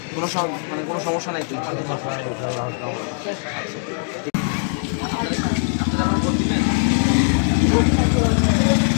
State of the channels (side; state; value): right; silent; 55 dB below the other